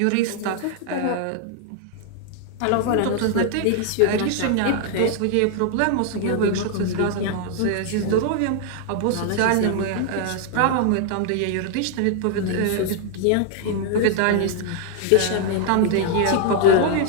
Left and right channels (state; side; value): different; both; correlation 0.00